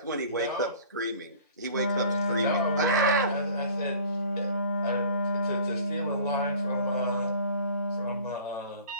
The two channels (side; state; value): both; inverted; correlation -0.47